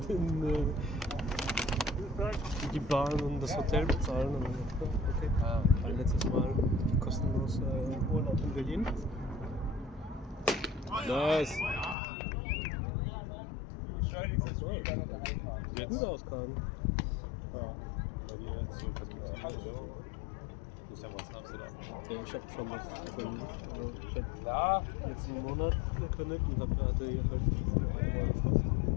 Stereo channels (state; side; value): drops out; right; at 12.0 s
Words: die Bahn und das Hotel bezahlen, dann okay. Ein letztes Mal kostenlos Urlaub in Berlin. Nice! Sieht gut aus, Kahn. Ja. Bei dir jetzt so Perspektive. Du bist ja was in Amsterdam. Ja, ich habe schon was gefunden. Also ich habe letzten Monat gekündigt und hatte hier halt